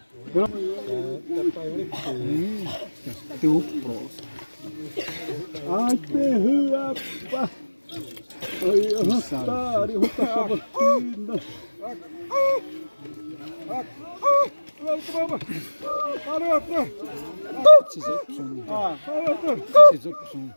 perra, pá. Ai, arrastar, arrastar a vacina.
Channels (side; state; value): both; inverted; correlation -1.00